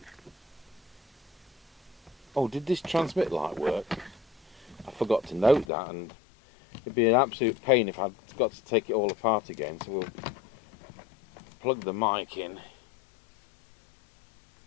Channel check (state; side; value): drops out; right; at 5.7 s